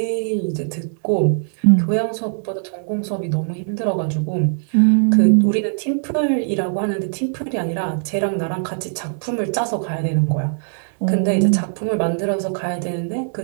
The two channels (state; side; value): silent; left; 63 dB below the other